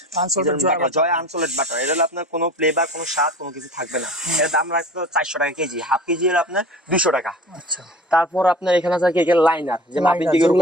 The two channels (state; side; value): normal; both; correlation 0.39